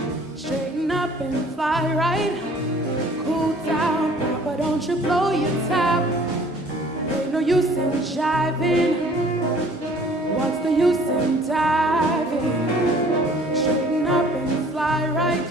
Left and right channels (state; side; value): normal; both; correlation 0.53